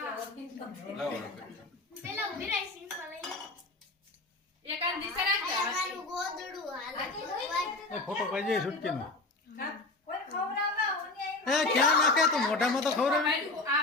લાવો એક આ દિશા રાખજે. એ ફોટો પાડજે છૂટકીનો. એ ક્યાં નાખે તો મોઢામાં તો ખવડાવે. ભાઈ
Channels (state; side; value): quieter; right; 3.0 dB